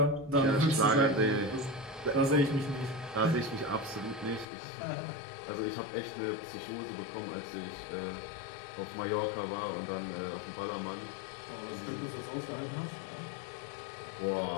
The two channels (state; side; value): drops out; right; at 4.5 s